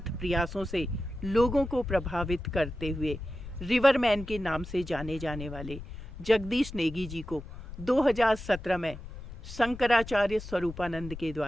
प्रयासों से लोगों को प्रभावित करते हुए रिवरमैन के नाम से जाने जाने वाले जगदीश नेगी जी को 2017 में शंकराचार्य स्वरूपानंद के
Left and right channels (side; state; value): left; noise; rumble, 12 dB below the sound